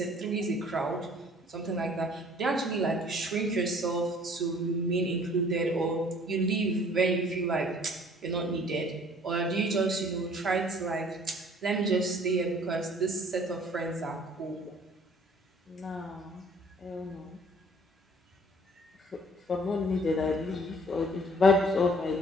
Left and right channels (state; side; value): normal; both; correlation 0.54